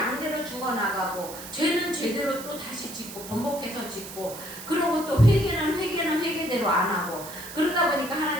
죽어나가고 죄는 죄대로 또 다시 짓고 번복해서 짓고, 그러고 또 회개는 회개대로 안 하고, 그러다 보니까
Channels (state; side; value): noise; right; hiss, 12 dB below the sound